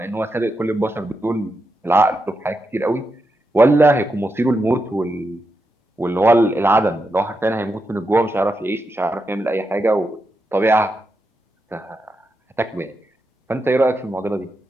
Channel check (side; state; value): both; normal; correlation 0.85